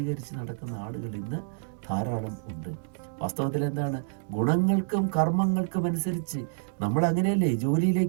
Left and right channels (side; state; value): left; silent; digital silence